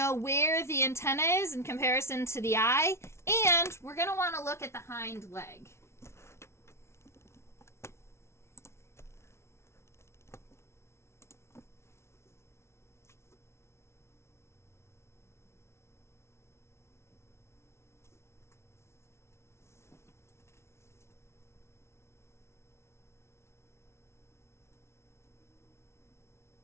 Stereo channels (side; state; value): right; late; 0.13 ms